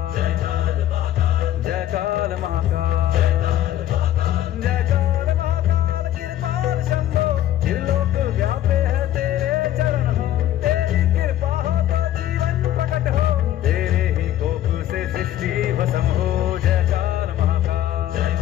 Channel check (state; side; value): quieter; right; 12.5 dB